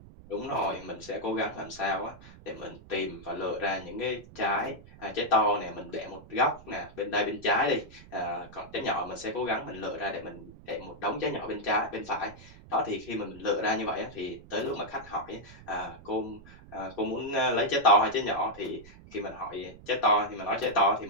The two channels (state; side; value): noise; right; rumble, 19 dB below the sound